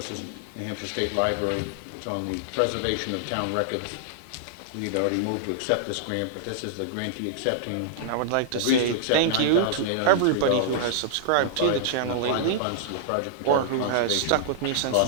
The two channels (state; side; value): different; both; correlation -0.01